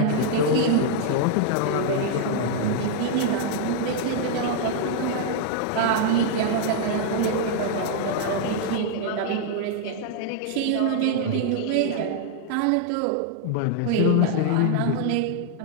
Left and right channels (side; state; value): both; different; correlation -0.01